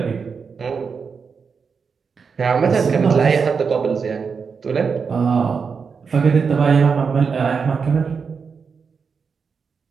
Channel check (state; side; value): quieter; left; 5.6 dB